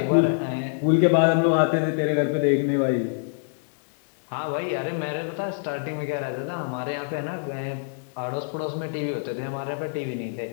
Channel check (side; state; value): right; silent; digital silence